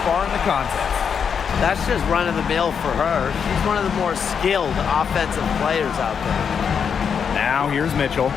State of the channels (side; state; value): right; quieter; 6.9 dB